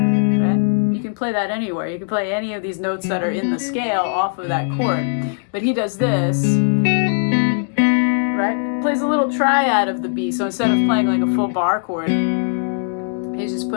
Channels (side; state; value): right; silent; 65 dB below the other